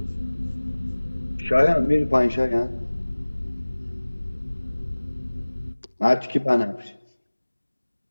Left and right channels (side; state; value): both; inverted; correlation -1.00